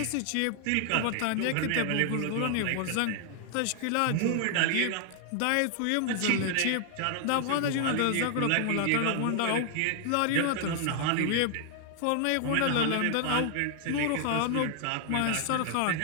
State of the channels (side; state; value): both; different; correlation 0.00